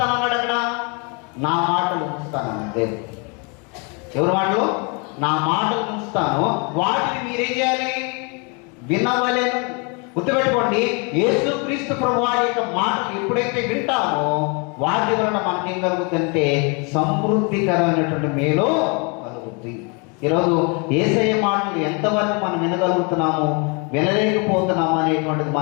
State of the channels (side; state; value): right; quieter; 33.1 dB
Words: అక్కడ నా మాటలు ఉంచుతానన్నాడు దేవుడు. ఎవరి మాటలు? నా మాటలు ఉంచుతాను, వాటిని మీరేం చేయాలి? వినవలెను. గుర్తుపెట్టుకోండి, యేసుక్రీస్తు ప్రభు వారి యొక్క మాటలు ఎప్పుడైతే వింటామో వాటి వలన మనకేం కలుగుతుందంటే సమృద్ధికరమైనటువంటి మేలు కలుగుతుంది. ఈరోజు యేసయ్య మాటలు ఎంతవరకు మనం వినగలుగుతున్నాము, వినలేకపోతున్నాము అనేటువంటిది